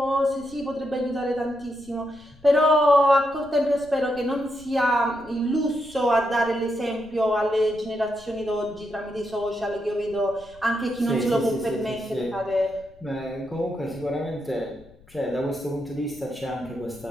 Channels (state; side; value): noise; left; rumble, 25 dB below the sound